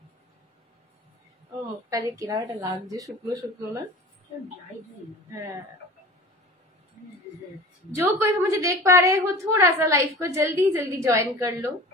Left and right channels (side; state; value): both; normal; correlation 0.38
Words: ও মুখটা যে কিরাটা লাগছে, শুকনো শুকনো না? হ্যাঁ, जो कोई भी मुझे देख पा रहे हो थोड़ा सा लाइव को जल्दी जल्दी ज्वाइन कर लो।